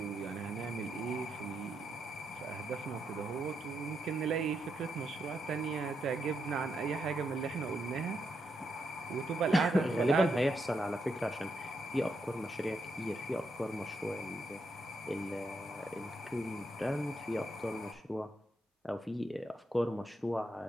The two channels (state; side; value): normal; both; correlation 0.81